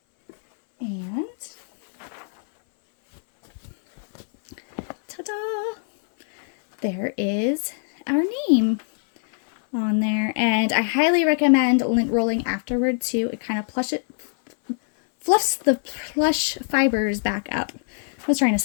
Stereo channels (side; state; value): right; silent; 61 dB below the other